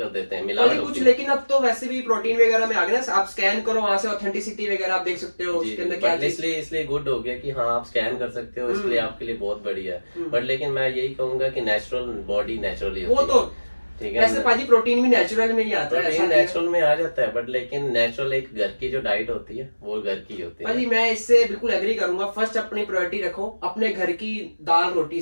देते हैं, मिलावट कुछ। होती है। लेकिन अब तो वैसे भी प्रोटीन वगैरह में आ गए ना, आप स्कैन करो वहां से ऑथेंटिसिटी वगैरह आप देख सकते हो उसके अंदर क्या चीज। इसलिए गुड हो गया कि हाँ आप स्कैन कर सकते हो, इसलिए आपके लिए बहुत बढ़िया है। बट लेकिन मैं यही कहूंगा कि नेचुरल बॉडी नेचुरली वो होती तो है, ठीक है। वैसे पाजी प्रोटीन भी नेचुरल में ही आता है, प्रोटीन नेचुरल में आ जाता है, बट लेकिन नेचुरल एक घर की जो डाइट होती है वो घर की होती है। पाजी मैं इससे बिल्कुल एग्री करूंगा। फर्स्ट अपनी प्रायोरिटी रखो अपने घर की दाल रोटी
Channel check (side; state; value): both; inverted; correlation -1.00